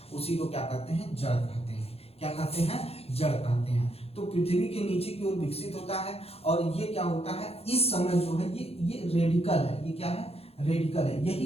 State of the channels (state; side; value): late; right; 0.29 ms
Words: उसी को क्या कहते हैं, जड़ कहते हैं। क्या कहते हैं, जड़ कहते हैं। तो पृथ्वी के नीचे की ओर विकसित होता है और ये क्या होता है, इस समय जो है ये रेडिकल है। ये क्या है, रेडिकल है।